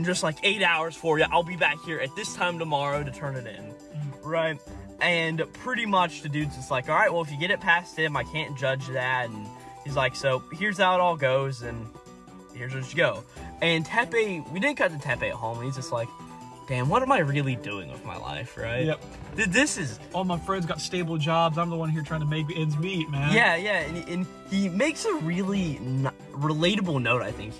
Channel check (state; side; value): identical; both; correlation 1.00